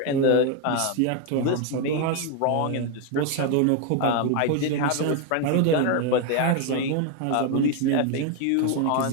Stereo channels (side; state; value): both; different; correlation 0.01